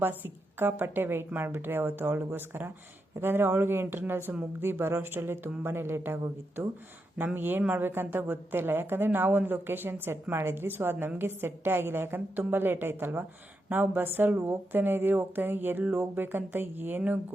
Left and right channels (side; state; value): both; normal; correlation 0.85